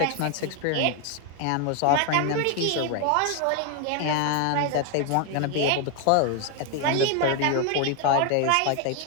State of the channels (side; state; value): both; different; correlation 0.01